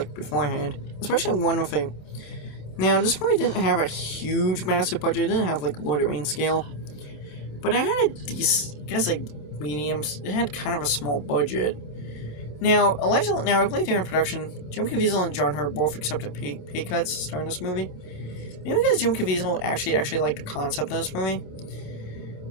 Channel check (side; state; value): right; late; 27 ms